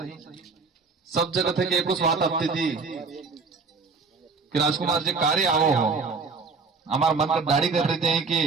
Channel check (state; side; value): quieter; left; 4.5 dB